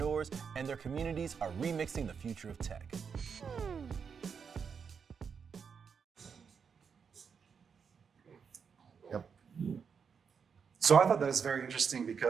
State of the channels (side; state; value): left; quieter; 6.4 dB